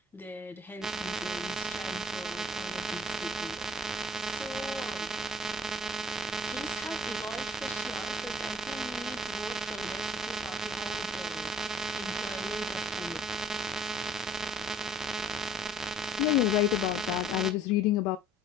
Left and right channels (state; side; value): normal; both; correlation 0.53